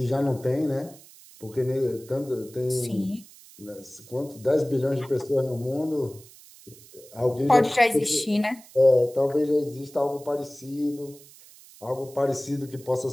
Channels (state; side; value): noise; right; hiss, 22 dB below the sound